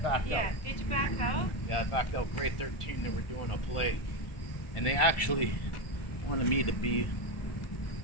Yeah. out. Did you back out? Yeah, I backed out grade 13. They were doing a play, and they actually wanted me to be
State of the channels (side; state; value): right; late; 1.4 ms